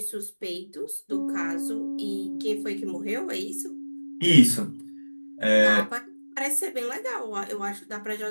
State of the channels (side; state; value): both; inverted; correlation -1.00